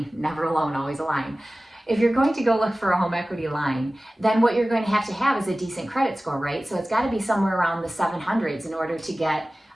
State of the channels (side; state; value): both; normal; correlation 0.97